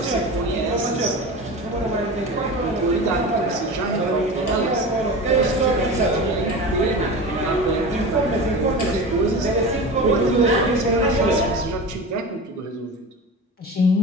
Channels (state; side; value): normal; both; correlation 0.30